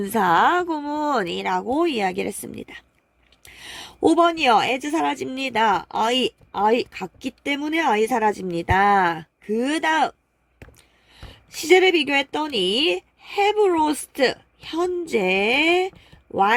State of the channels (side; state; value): both; identical; correlation 1.00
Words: 분사구문이라고 이야기를 했습니다. 5번이요. as 사라집니다. I 같기 때문에 I 사라집니다. 그 다음 시제를 비교했더니 have lost 현재